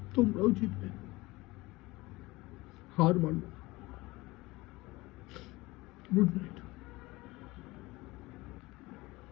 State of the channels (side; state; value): right; quieter; 21.1 dB